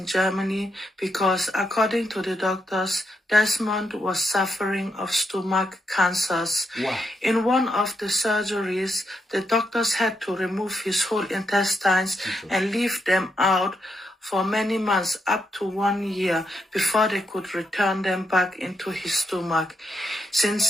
Germany? Because according to the doctors, Desmond was suffering of stomach cancers. Wow. In one of the surgeries, the doctors had to remove his whole intestines and leave them out for many months, up to 1 year, before they could return them back into his stomach.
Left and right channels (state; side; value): normal; both; correlation 0.80